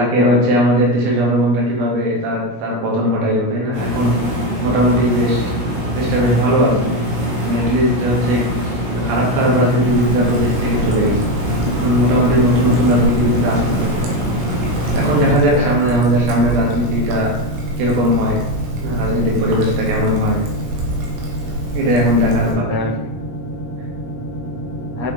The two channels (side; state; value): left; late; 17 ms